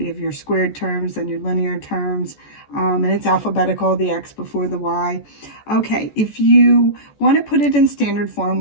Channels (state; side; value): late; right; 14 ms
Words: you have your squared terms and your linear terms, and it's alphabetical, the x before the y. Okay, if you want to put it in standard form